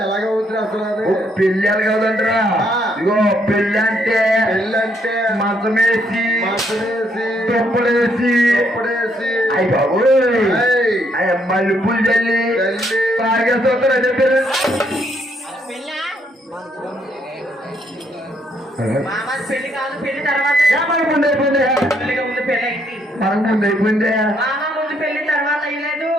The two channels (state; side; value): normal; both; correlation 0.71